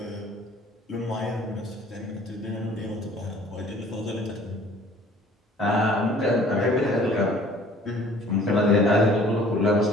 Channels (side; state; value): both; normal; correlation 0.52